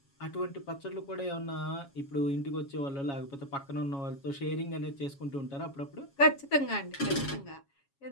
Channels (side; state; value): right; late; 7.2 ms